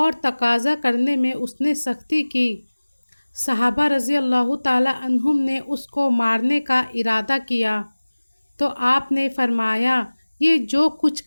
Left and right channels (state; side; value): inverted; both; correlation -1.00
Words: تقاضا کرنے میں اس نے سختی کی۔ صحابہ رضی اللہ تعالی عنہم نے اس کو مارنے کا ارادہ کیا تو آپ نے فرمایا، یہ جو کچھ